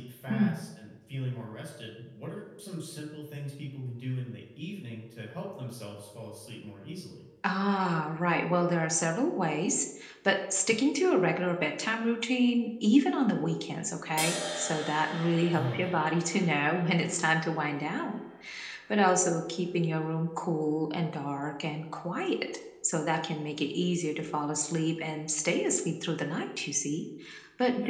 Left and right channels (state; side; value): identical; both; correlation 1.00